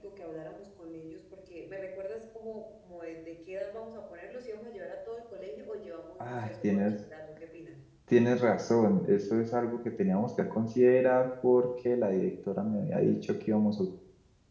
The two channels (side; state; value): both; identical; correlation 1.00